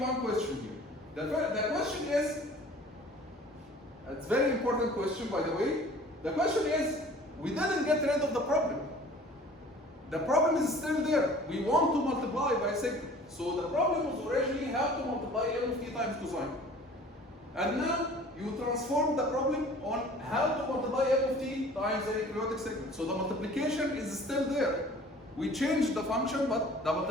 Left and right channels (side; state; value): both; normal; correlation 0.48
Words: question here. The question is, it's a very important question by the way. The question is, we didn't get rid of the problem. The problem is still there. We want to multiply by signal. So the problem was originally how to multiply M of t times cosine. And now you transform the problem on how to multiply M of t times any periodic signal. So the multiplication is still there. We changed the function, but the